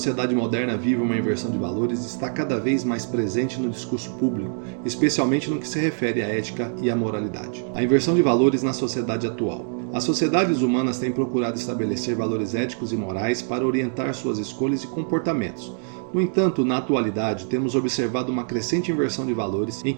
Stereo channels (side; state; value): left; silent; 63 dB below the other